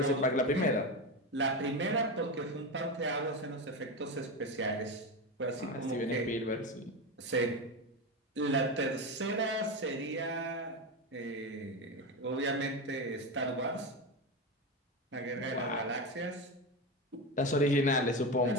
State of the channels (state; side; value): normal; both; correlation 0.17